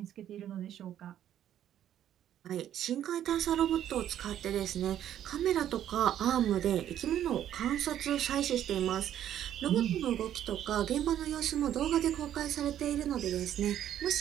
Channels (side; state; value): left; quieter; 11.0 dB